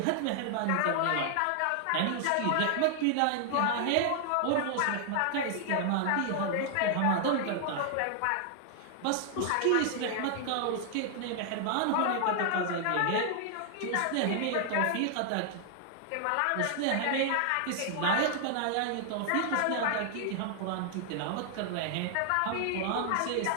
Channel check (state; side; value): different; both; correlation 0.00